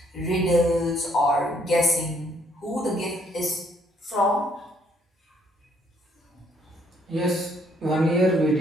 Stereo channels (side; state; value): both; normal; correlation 0.68